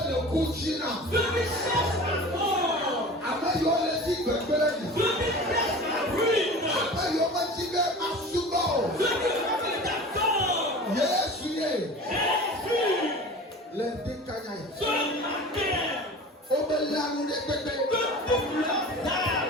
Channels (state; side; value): normal; both; correlation 0.37